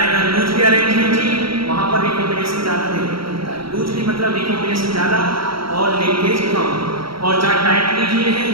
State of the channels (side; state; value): left; late; 0.75 ms